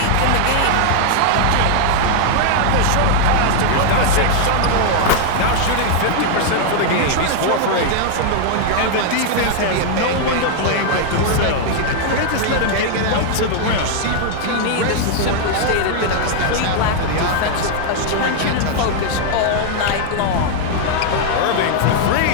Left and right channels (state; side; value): different; both; correlation 0.00